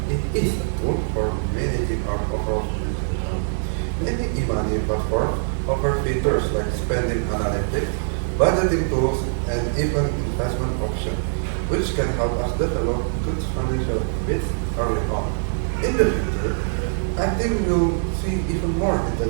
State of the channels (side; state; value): left; silent; 63 dB below the other